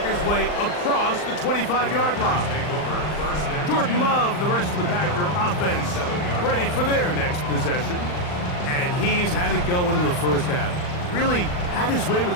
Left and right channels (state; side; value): late; right; 39 ms